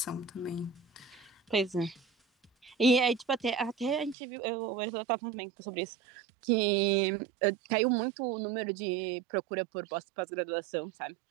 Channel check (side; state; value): left; drops out; at 4.2 s